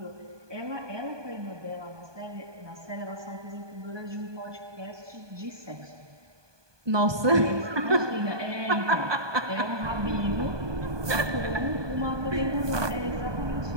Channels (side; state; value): left; late; 1.2 ms